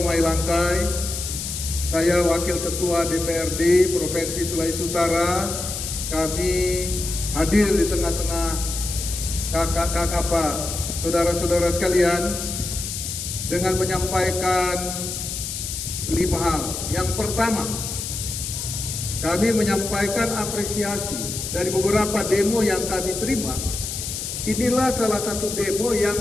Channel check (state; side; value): noise; left; hiss, 5 dB below the sound